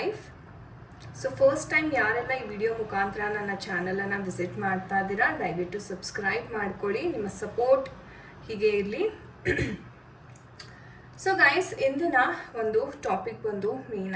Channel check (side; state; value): both; identical; correlation 1.00